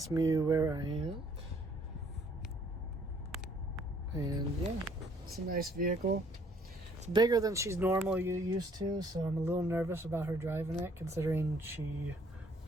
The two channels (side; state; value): both; normal; correlation 0.62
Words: me where I am. And yeah, it's a nice vehicle. It's bigger than she's normally used to, so I'm a little nervous about her driving it, considering she